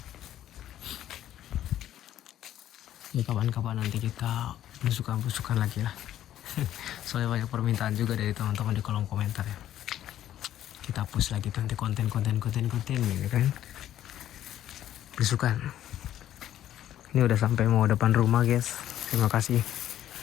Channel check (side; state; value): right; quieter; 12.0 dB